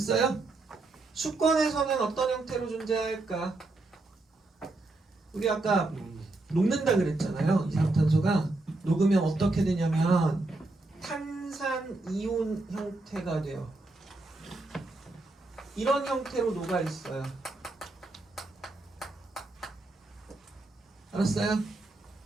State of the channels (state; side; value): quieter; left; 3.0 dB